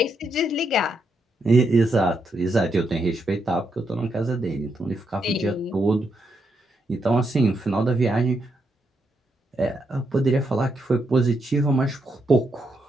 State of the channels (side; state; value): both; normal; correlation 0.80